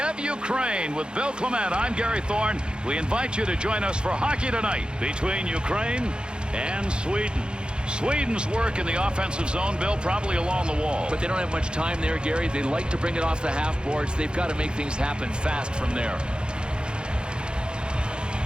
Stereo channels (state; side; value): late; left; 0.050 ms